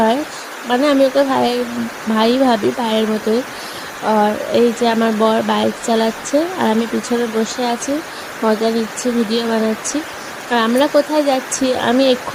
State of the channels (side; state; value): both; identical; correlation 1.00